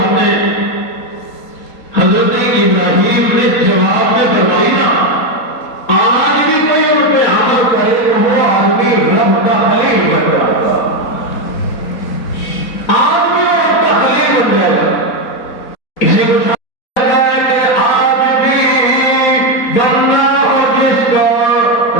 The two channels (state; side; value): late; right; 4.2 ms